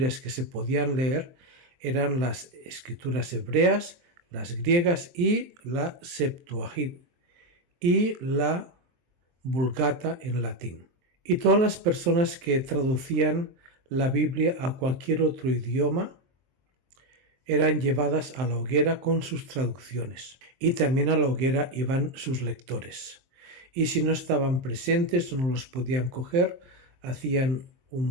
que se podían leer eran las escrituras hebreas, las griegas y la Septuaginta y la Vulgata en latín. Y todas las personas que traducían la Biblia a cualquier otro idioma eran llevadas a la hoguera con sus traducciones. Y también a la hoguera iban sus lectores. Y si no estaban presentes o no los podían coger, hacían un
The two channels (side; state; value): left; late; 23 ms